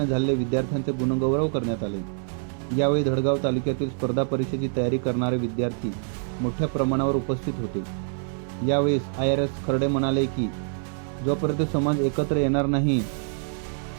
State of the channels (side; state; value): left; silent; 60 dB below the other